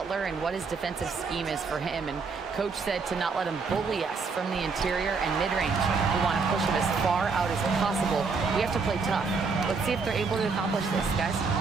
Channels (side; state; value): left; quieter; 4.8 dB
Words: and what his defensive scheme is for him, and coach said to not let him bully us from the interior and mid-range. We want to push him as far out as possible. We have to play tough. Let's see if they're able to accomplish this, guys.